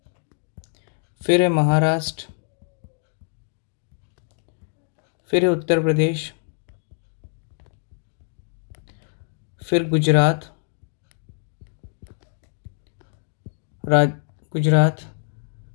फिर है महाराष्ट्र, फिर है उत्तर प्रदेश, फिर गुजरात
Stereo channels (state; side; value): silent; right; digital silence